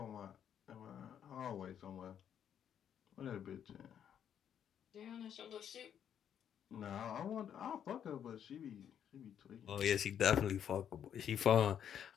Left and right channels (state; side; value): quieter; right; 9.1 dB